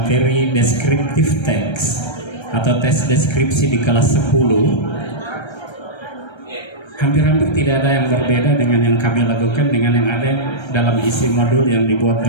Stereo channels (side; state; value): right; late; 1.3 ms